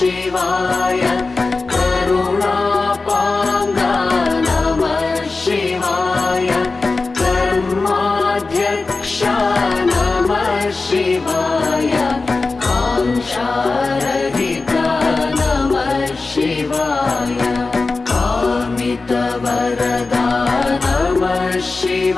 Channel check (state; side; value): quieter; right; 3.8 dB